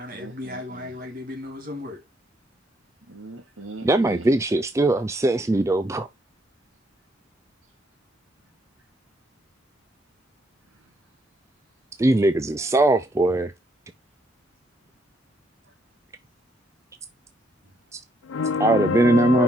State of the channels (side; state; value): both; normal; correlation 0.72